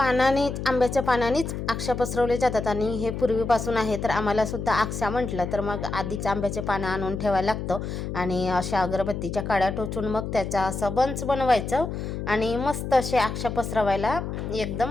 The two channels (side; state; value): left; noise; hum, 5 dB below the sound